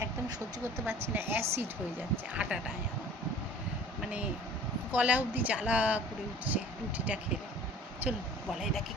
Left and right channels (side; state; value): both; normal; correlation 0.47